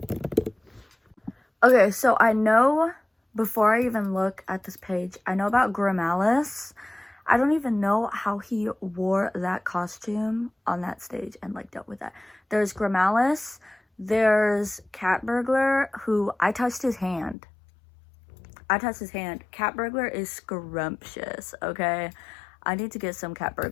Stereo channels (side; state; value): right; drops out; at 17.4 s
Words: Okay, so I know, before I even look at this page, I know about Grimalis. I don't even know how he wore that costume on that stage and like dealt with that. There's Grammalis, there's Cat Burglar, who I touched his hand. Cat Burglar is scrumptious, okay? I need to get some Cat